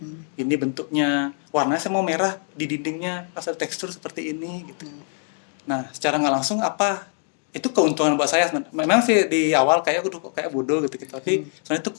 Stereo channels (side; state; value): right; silent; 57 dB below the other